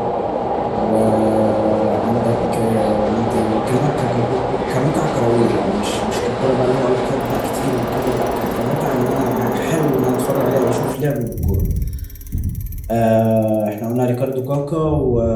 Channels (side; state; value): both; identical; correlation 1.00